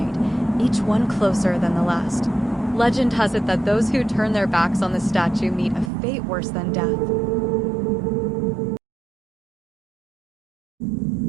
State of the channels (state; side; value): drops out; left; at 5.9 s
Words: each one closer than the last. Legend has it that those who turn their backs on the statue meet a fate worse than death.